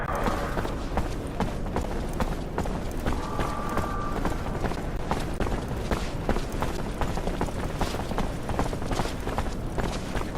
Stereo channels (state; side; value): identical; both; correlation 1.00